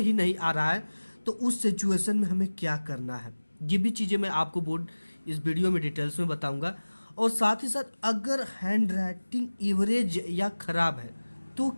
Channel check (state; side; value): inverted; both; correlation -1.00